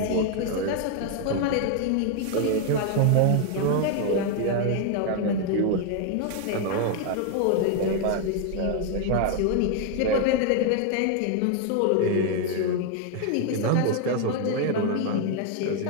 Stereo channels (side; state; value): both; different; correlation 0.00